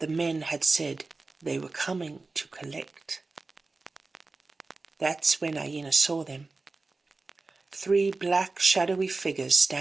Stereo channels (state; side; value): quieter; left; 3.7 dB